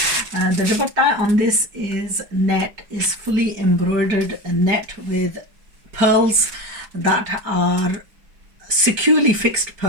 The dupatta on this is fully embroidered net with pearls that are securely fixed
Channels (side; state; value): left; late; 5.1 ms